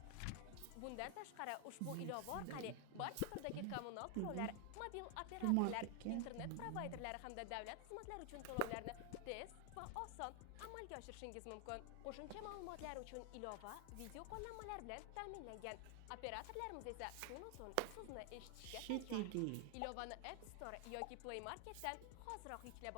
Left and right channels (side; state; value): both; different; correlation 0.00